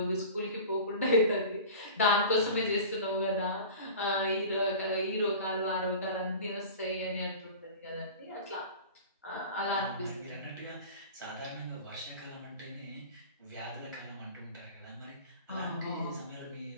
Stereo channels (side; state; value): both; inverted; correlation -0.37